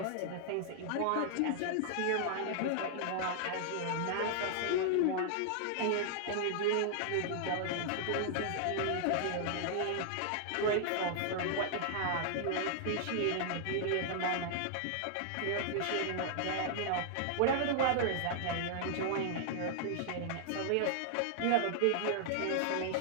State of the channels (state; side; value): different; both; correlation -0.01